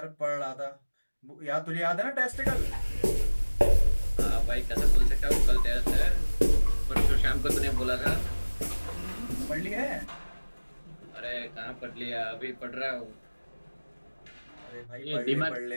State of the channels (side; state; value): both; inverted; correlation -1.00